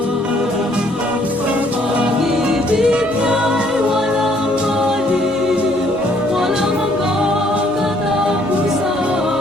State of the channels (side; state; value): both; normal; correlation 0.64